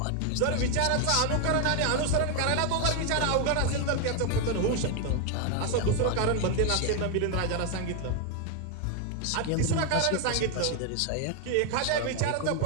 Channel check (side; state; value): both; different; correlation 0.01